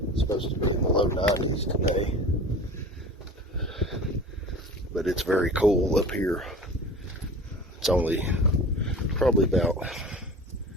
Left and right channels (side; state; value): both; normal; correlation 0.38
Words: It's supposed to be in the low 90s today. But it's very cool up here. It's only probably about